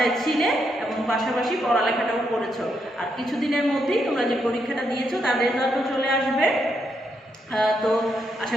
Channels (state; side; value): normal; both; correlation 0.79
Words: ছিলে এবং পাশাপাশি পড়ালেখাটাও করেছো। আর কিছুদিনের মধ্যেই তোমরা যে পরীক্ষাটা দিয়েছো তার রেজাল্টও চলে আসবে। তো আশা